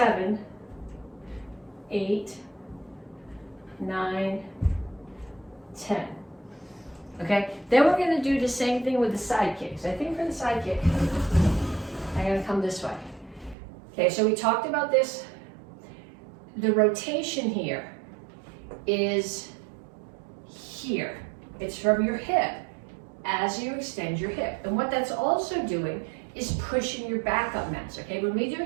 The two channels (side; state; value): left; drops out; at 13.6 s